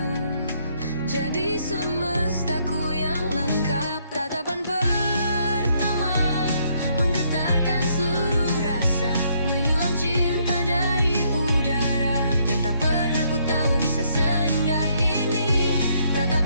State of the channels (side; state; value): both; inverted; correlation -0.70